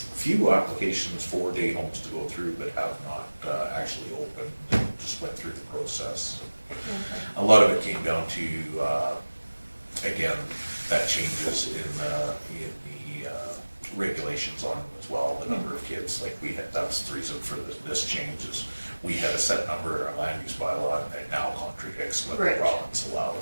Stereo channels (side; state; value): both; inverted; correlation -1.00